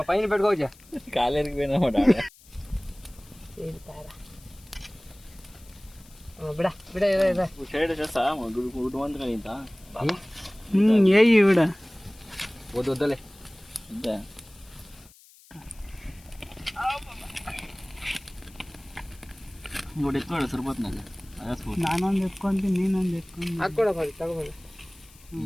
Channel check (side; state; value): left; noise; hiss, 25 dB below the sound